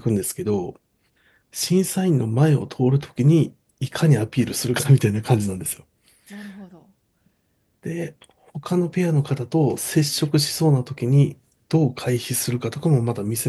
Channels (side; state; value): both; identical; correlation 1.00